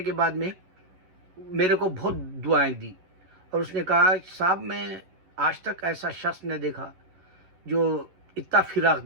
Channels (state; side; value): late; left; 11 ms